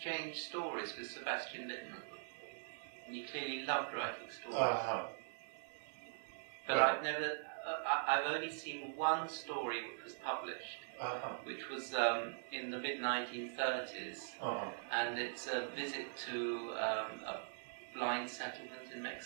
stories with Sebastian Littman, and he clearly loved writing stories. But right. I've only seen one story which was published, which was in the mid-1930s, and it's a visit to a blind settlement in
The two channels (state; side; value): silent; left; digital silence